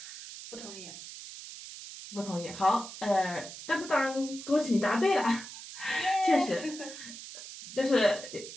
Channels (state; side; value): noise; right; hiss, 12 dB below the sound